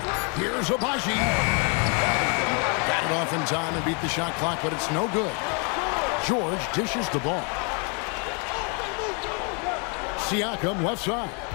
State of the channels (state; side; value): quieter; right; 35.7 dB